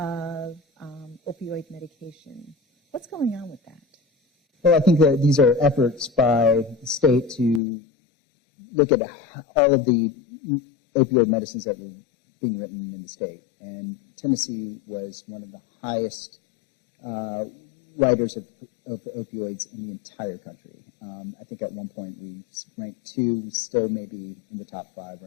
opioid medication. What's going on with that? Well, I think that these are efforts by the state to look at all of the opioid medicines that were being written in the state. And Tennessee was one of the highest writers of opioids in the entire country. I think at one point we ranked 2, we still maybe in the top 5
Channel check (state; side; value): drops out; right; at 7.6 s